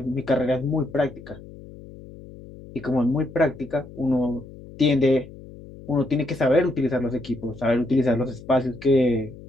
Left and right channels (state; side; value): noise; left; hum, 17 dB below the sound